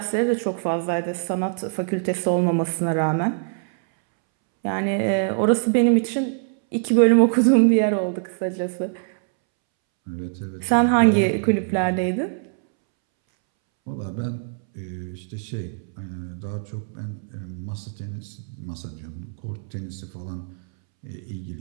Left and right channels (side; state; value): left; silent; 63 dB below the other